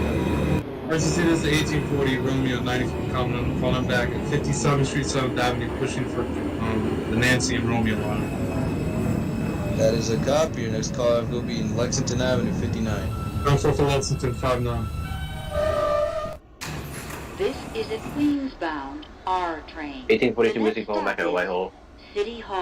First is the 1840 Romeo 90 calling back at 57th Street, 7th Avenue, pushing for the Nancy and Romeo line. That is a copy. Your next call will be in Lexington Avenue, 59. Go for Lexington, 59. This is a Queens-bound R train. 1842 Whiskey calling back at Whitehall. City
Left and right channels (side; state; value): both; identical; correlation 1.00